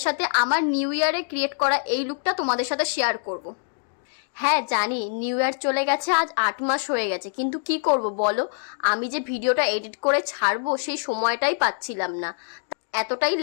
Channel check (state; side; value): silent; right; 62 dB below the other